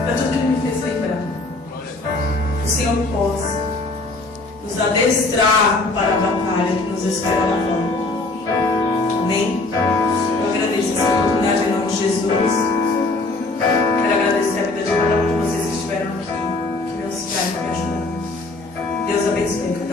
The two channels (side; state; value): right; quieter; 3.2 dB